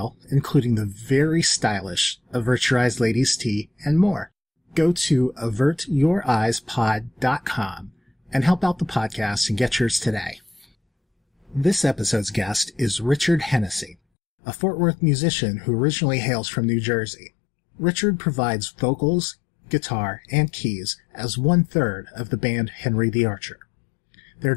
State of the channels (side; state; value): right; drops out; at 14.0 s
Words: including the very stylish Avert Your Eyes Ladies Tee and more. Go to avertyoureyespod.com and help out the podcast and get yours today. This episode's guest is Richard Hennessy, a Fort Worth musician who originally hails from New Jersey. Richard provides vocals, guitar, and keys as 1/3 of the band Henry the Archer. Their